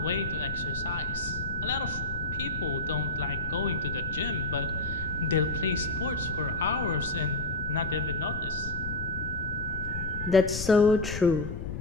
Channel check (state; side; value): noise; left; rumble, 6 dB below the sound